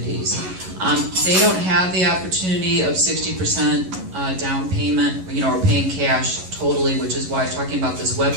They don't have the opportunity of 60% down payment, or paying cash totally, which is why I'm talking about this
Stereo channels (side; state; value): left; late; 11 ms